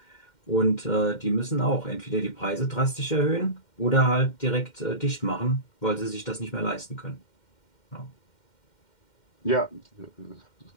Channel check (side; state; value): right; late; 2.1 ms